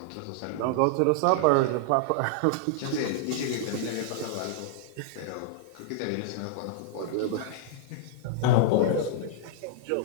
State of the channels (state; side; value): different; both; correlation -0.01